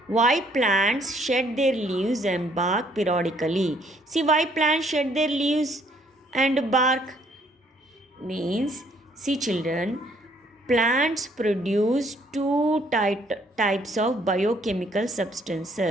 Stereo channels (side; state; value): both; normal; correlation 0.65